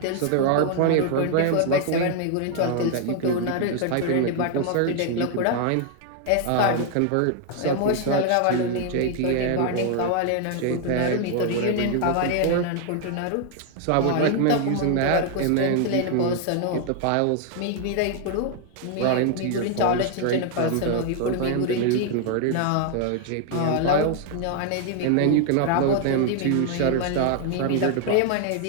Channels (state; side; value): different; both; correlation 0.00